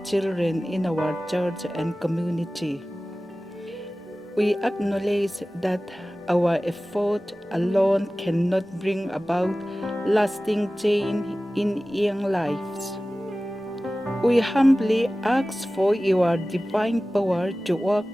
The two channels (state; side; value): normal; both; correlation 0.97